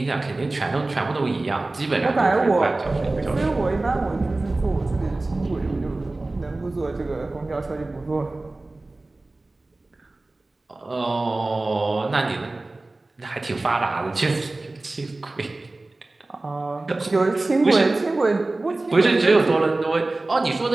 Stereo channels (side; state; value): left; quieter; 3.0 dB